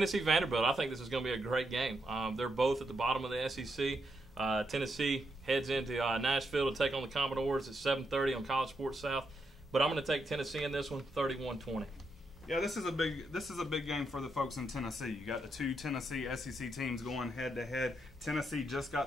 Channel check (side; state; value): both; normal; correlation 0.81